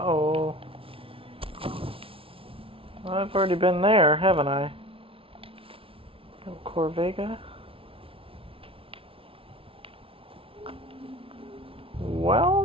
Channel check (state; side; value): late; left; 0.26 ms